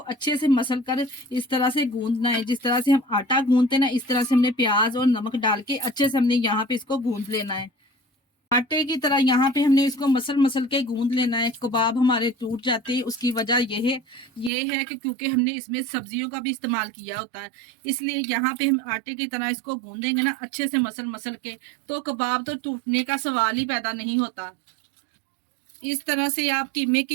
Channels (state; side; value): drops out; left; at 14.5 s